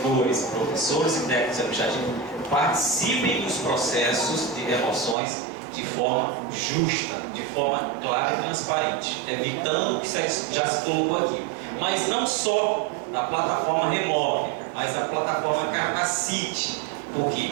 professores e técnicos administrativos participem dos processos de remoções de forma justa, de forma clara e transparente, evitando o que já se colocou aqui. Mas não só da plataforma Remove, mas da plataforma Capacite. Por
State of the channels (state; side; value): drops out; left; at 5.2 s